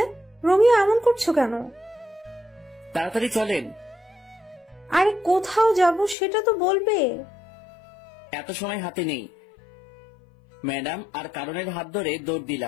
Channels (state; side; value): drops out; right; at 6.2 s